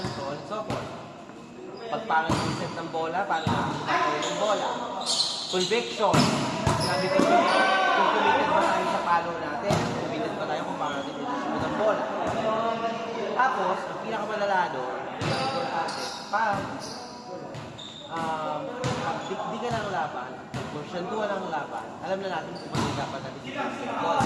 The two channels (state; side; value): identical; both; correlation 1.00